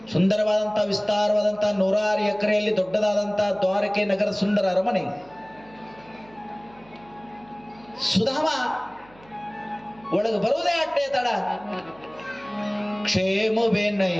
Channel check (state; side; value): noise; right; hum, 26 dB below the sound